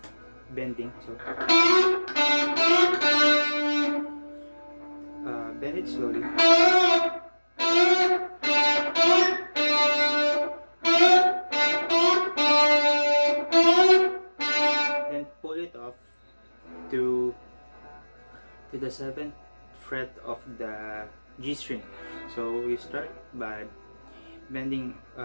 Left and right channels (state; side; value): inverted; both; correlation -1.00